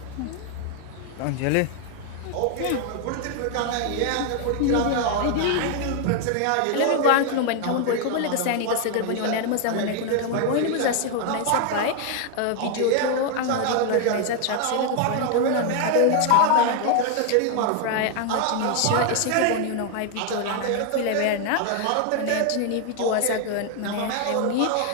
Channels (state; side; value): different; both; correlation 0.00